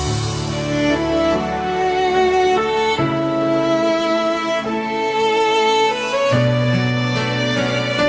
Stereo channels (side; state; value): both; identical; correlation 1.00